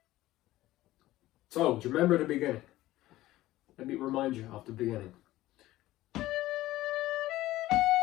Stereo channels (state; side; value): quieter; right; 16.2 dB